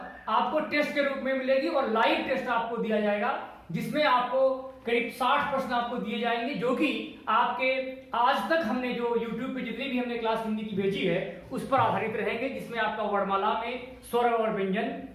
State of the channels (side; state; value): both; identical; correlation 1.00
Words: आपको टेस्ट के रूप में मिलेगी और लाइव टेस्ट आपको दिया जाएगा, जिसमें आपको करीब 60 प्रश्न आपको दिए जाएंगे जो कि आपके आज तक हमने जो YouTube पे जितनी भी हमने क्लास हिंदी की भेजी है उस पर आधारित रहेंगे, जिसमें आपका वर्णमाला में स्वर और व्यंजन,